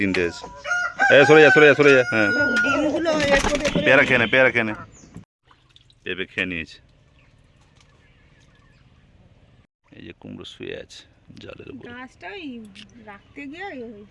আছে। সরে যা সরে যা সরে যা। হ্যাঁ, পেয়ারা খেয়ে নে, পেয়ারা খেয়ে নে। পেঁপে খেয়ে নিয়েছে। এই যে কুমড়ো শুয়ে আছে জলের উপরে। গাছটাই রাখতে গিয়ে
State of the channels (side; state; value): both; identical; correlation 1.00